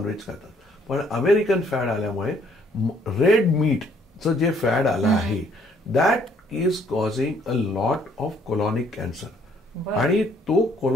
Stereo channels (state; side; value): normal; both; correlation 0.65